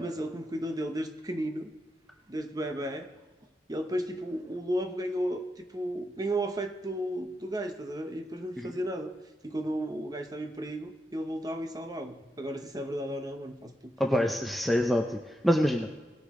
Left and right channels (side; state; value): both; normal; correlation 0.85